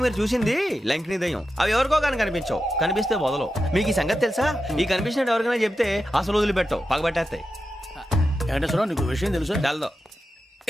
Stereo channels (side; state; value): both; normal; correlation 0.90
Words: మీరు చూసింది లంకిని దయ్యం. అవి ఎవరికో కానీ కనిపించవు, కనిపిస్తే వదలవు. మీకు ఈ సంగతి తెలుసా? ఈ కనిపించినట్టు ఎవరికైనా చెప్తే అసలు వదిలిపెట్టవు, పగబట్టేస్తాయి. వెంకటేశ్వరరావు నీకు విషయం తెలుసా? డల్దో